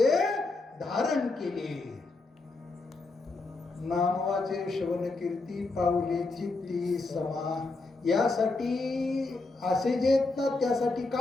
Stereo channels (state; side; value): quieter; right; 3.4 dB